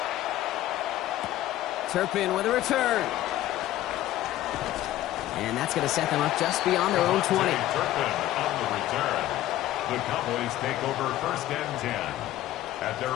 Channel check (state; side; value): quieter; right; 14.3 dB